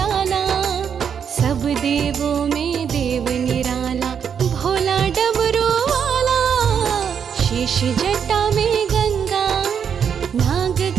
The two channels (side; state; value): left; quieter; 7.5 dB